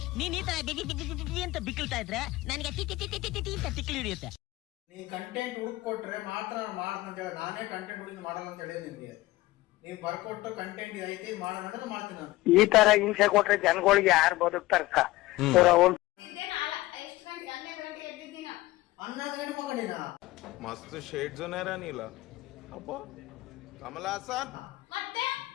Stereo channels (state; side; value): quieter; right; 18.4 dB